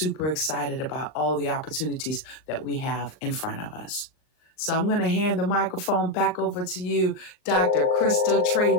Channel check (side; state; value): right; late; 39 ms